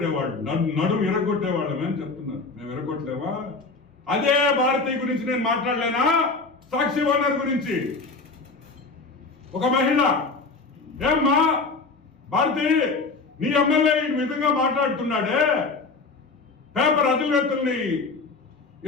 అని చెప్తున్నారు. మేము ఇరగొట్టలేమా? అదే భారతి గురించి నేను మాట్లాడలేనా? సాక్షి ఓనర్ గురించి ఒక మహిళ, ఏమ్మా భారతి, నీ ఎమ్మెల్యే ఈ విధంగా మాట్లాడుతున్నాడే, పేపర్ అధినేతల్ని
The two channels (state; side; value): quieter; right; 3.9 dB